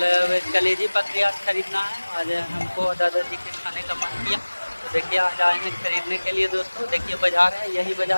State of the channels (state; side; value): inverted; both; correlation -1.00